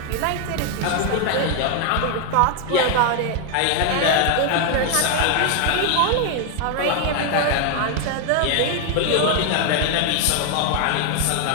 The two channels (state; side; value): different; both; correlation 0.00